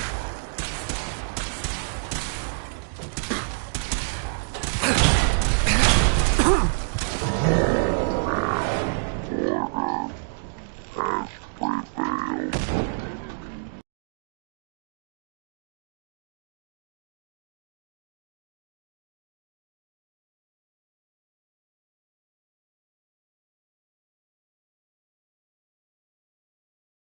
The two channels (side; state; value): left; silent; digital silence